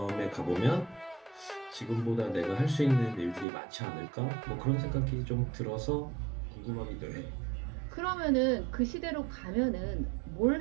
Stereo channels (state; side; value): drops out; left; at 3.5 s